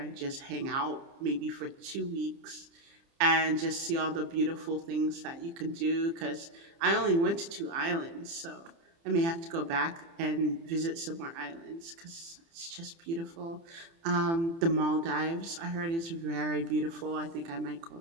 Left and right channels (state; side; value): late; left; 30 ms